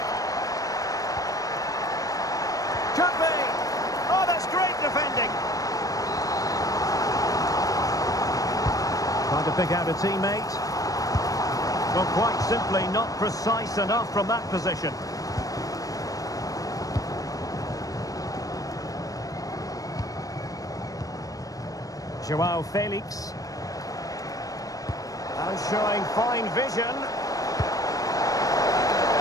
Could be. Oh, that's great defending. Trying to pick out a teammate. Well, quite simply not precise enough from that position. Joao Felix. And showing fine vision.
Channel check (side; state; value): right; late; 0.17 ms